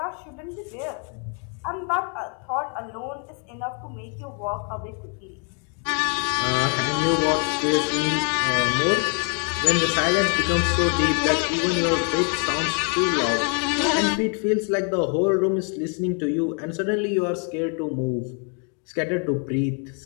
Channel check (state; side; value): quieter; right; 40.0 dB